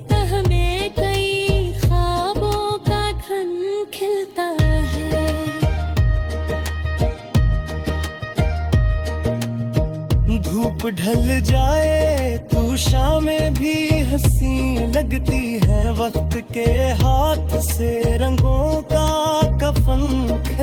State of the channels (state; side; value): identical; both; correlation 1.00